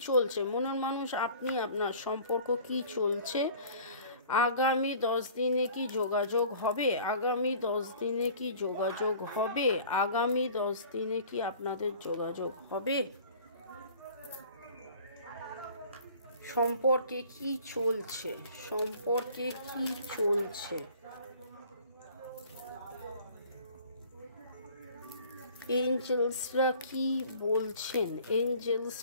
চলছে, মনের মানুষ আপনি, আপনার সম্পর্ক কি চলছে, আগামী 10 দিনে কি যোগাযোগ হবে, আগামী 10 দিনে কি যোগাযোগ হবে, আগামী 10 দিনে কি আপনাদের যোগাযোগ হবে, সম্পর্কে কি চলছে, সম্পর্কে কি চলছে, এঞ্জেলসরা কি বলছেন,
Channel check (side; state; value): both; inverted; correlation -0.48